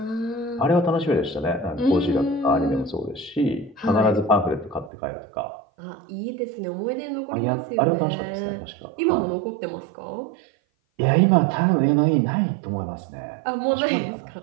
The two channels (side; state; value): left; drops out; at 4.9 s